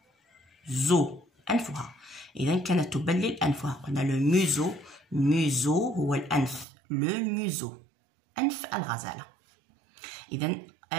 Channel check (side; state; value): left; drops out; at 6.7 s